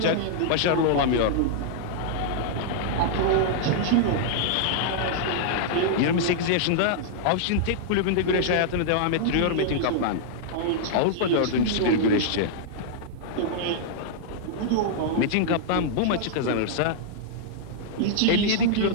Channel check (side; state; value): both; different; correlation -0.01